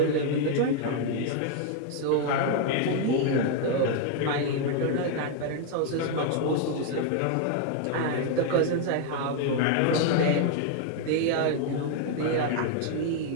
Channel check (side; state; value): both; different; correlation 0.00